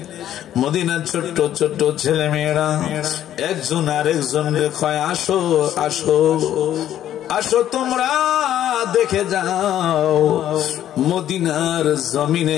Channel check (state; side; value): quieter; right; 11.5 dB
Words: মদিনার ছোট্ট ছোট্ট ছেলে মেয়েরা একজন আরেকজনকে কয়, আসো আসো আসো তোমরা দেখে যাও, মদিনার